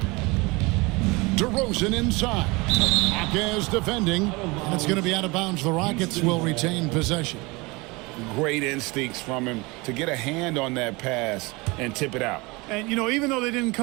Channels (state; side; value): quieter; left; 25.1 dB